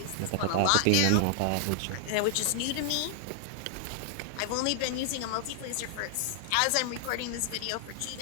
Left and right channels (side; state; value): both; different; correlation 0.00